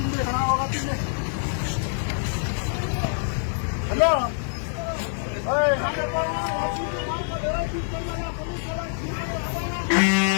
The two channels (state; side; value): silent; right; digital silence